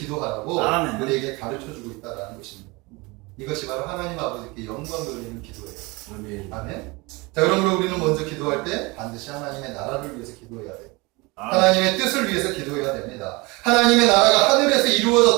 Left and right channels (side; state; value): left; quieter; 25.1 dB